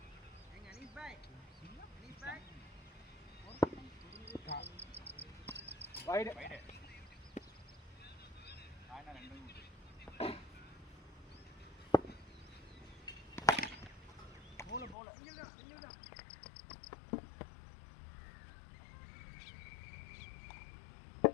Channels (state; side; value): drops out; right; at 15.0 s